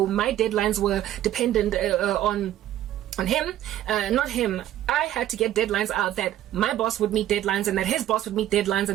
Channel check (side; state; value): left; quieter; 12.7 dB